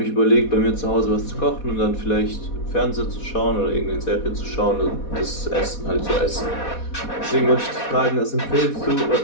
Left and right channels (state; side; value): late; right; 4.2 ms